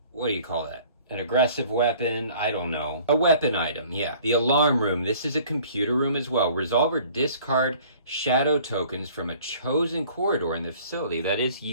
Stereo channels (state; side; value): inverted; both; correlation -0.52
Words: what do you call that? An aggressive weapon, I don't know. A weapon item, yeah. The alarm room, this is a computer room as well. Resolve or discard shadow tokens from a chosen corridor in the facility. That is